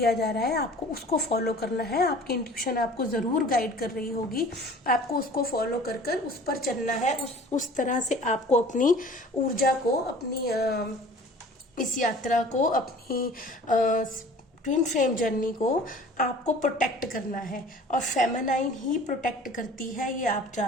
जा रहा है, आपको उसको फॉलो करना है। आपकी इंट्यूशन आपको ज़रूर गाइड कर रही होगी, आपको उसको फॉलो कर कर उस पर चलना है। उस तरह से आपको अपनी ऊर्जा को, अपनी इस यात्रा को, अपनी ट्विन फ्लेम जर्नी को आपको प्रोटेक्ट करना है। और फेमिनाइन ही प्रोटेक्ट करती है, ये आप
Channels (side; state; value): both; normal; correlation 0.46